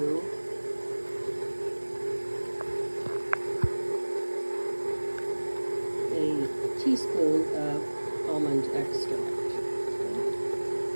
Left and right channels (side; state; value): both; inverted; correlation -1.00